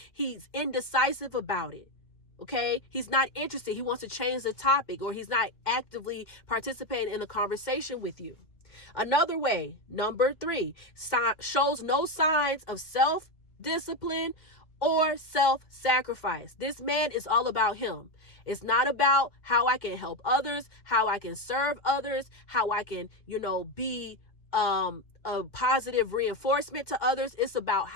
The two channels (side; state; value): right; late; 2.1 ms